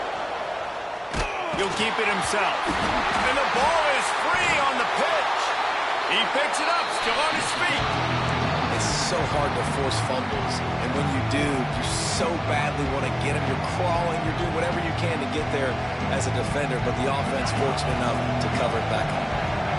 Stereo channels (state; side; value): identical; both; correlation 1.00